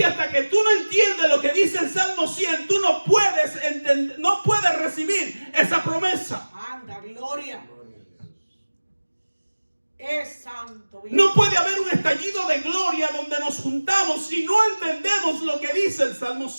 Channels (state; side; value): inverted; both; correlation -1.00